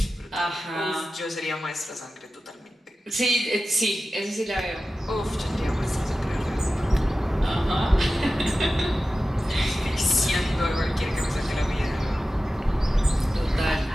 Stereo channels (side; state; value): both; normal; correlation 0.94